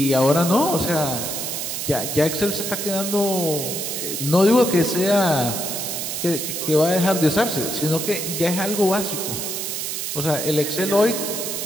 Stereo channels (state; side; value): noise; right; hiss, 4 dB below the sound